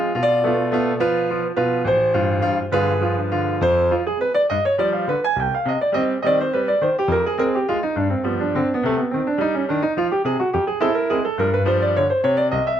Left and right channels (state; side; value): normal; both; correlation 0.80